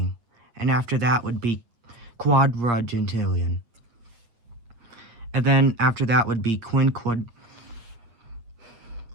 And after that would be quadragentillion. And then after that would be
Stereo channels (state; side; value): late; left; 8.5 ms